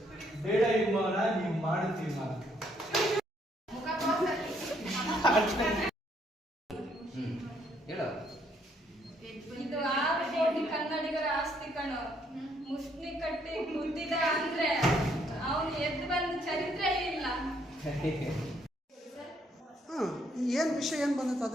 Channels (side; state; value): both; normal; correlation 0.70